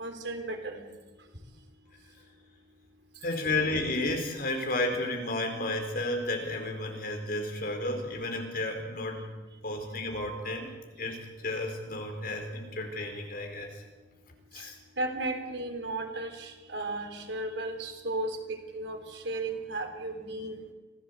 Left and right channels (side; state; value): both; normal; correlation 0.14